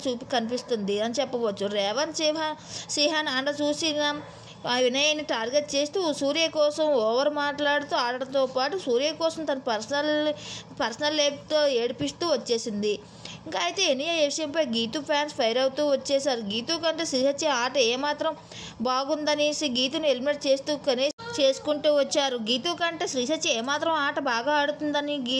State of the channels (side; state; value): both; identical; correlation 1.00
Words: కనిపిస్తుంది అని చెప్పవచ్చు. రేవంత్ సిహాన్ అండ చూసిన వినయ్ని టార్గెట్ చేస్తూ సూర్య కోసం ఓవర్ మాట్లాడుతూ ఆడటంతో పాటు సూర్య కోసం తన పర్సనల్ లైఫ్తో ఏడిపిస్తూ వచ్చేసింది. ఇంకా అయితే ఎనియా విషయంపై గీతు ఫ్యాన్స్ ఫైర్ అవుతూ వచ్చేసారు. గీతు కంటే శ్రీ సత్య ఆట ఏమాత్రం బాగుందనేసి గీతుని ఎలిమినేట్ చేసుకుంటూ వచ్చారు. గీతు కంటే శ్రీ సత్య ఏమాత్రం ఆట బాగా ఆడుతుందని